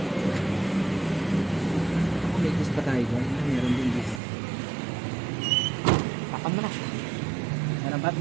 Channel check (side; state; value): left; drops out; at 4.2 s